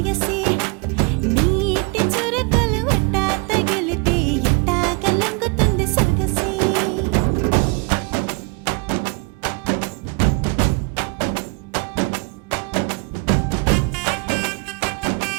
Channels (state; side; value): quieter; left; 30.3 dB